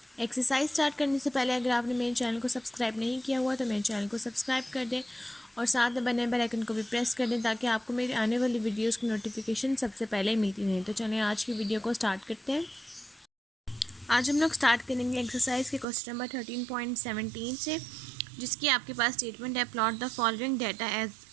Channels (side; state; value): left; drops out; at 15.9 s